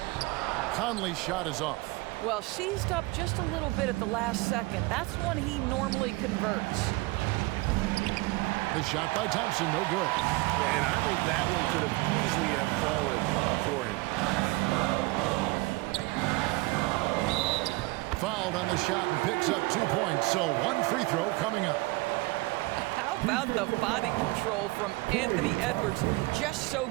Conley's shot is off. Well, seized up just a little bit at the last second. That's when he normally converts. The shot by Thompson, no good. And I think that one could have easily have fallen for him. Fouled on the shot and picks up 2 points, so 1 free throw coming up. How about the body control from Anthony Edwards? Just so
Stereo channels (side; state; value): left; quieter; 23.1 dB